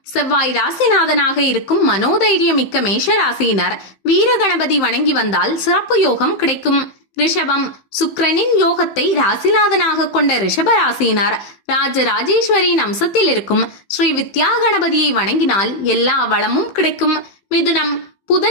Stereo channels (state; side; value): late; right; 15 ms